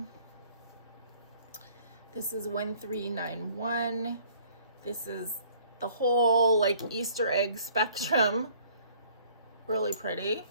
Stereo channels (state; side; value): inverted; both; correlation -0.56